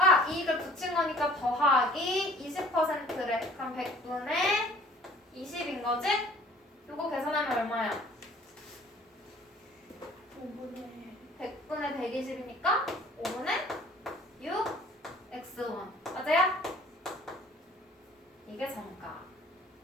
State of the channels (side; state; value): both; normal; correlation 0.52